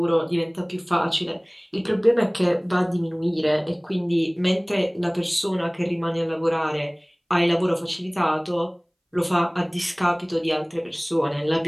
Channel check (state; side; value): identical; both; correlation 1.00